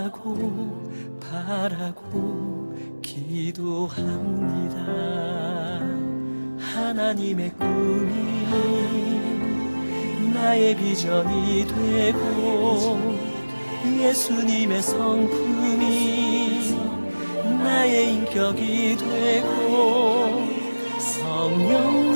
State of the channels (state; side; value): inverted; both; correlation -1.00